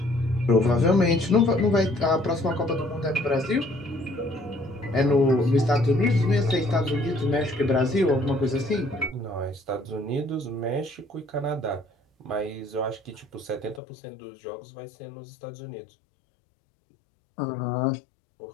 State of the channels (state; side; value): drops out; right; at 13.8 s